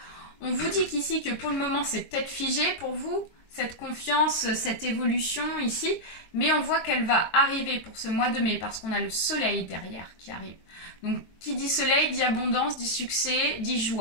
On vous dit qu'ici que pour le moment, c'est peut-être figé pour vous, cette confiance, cette évolution ici. Mais on voit qu'elle va arriver pour ce mois de mai parce qu'on a le soleil derrière qui arrive. Donc qui dit soleil, dit abondance, dit succès, dit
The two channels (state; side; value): late; right; 22 ms